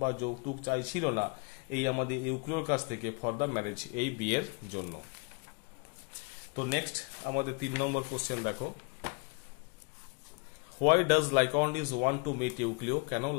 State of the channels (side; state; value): right; quieter; 31.9 dB